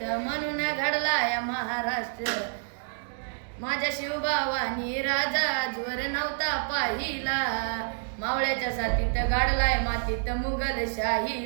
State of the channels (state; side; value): silent; left; digital silence